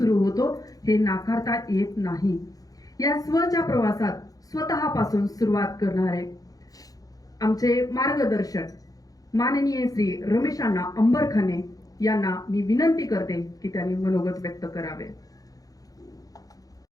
होतो हे नाकारता येत नाही. या स्वच्या प्रवासात स्वतःपासून सुरुवात करणारे आमचे मार्गदर्शक माननीय श्री रमेशांना अंबरखाने यांना मी विनंती करते की त्यांनी मनोगत व्यक्त करावे.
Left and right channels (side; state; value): right; late; 0.17 ms